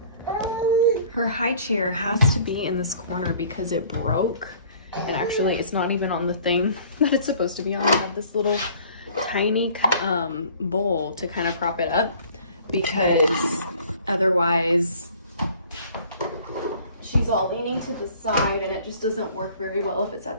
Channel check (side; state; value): both; inverted; correlation -0.52